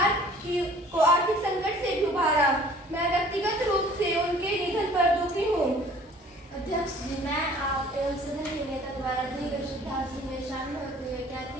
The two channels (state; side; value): normal; both; correlation 0.52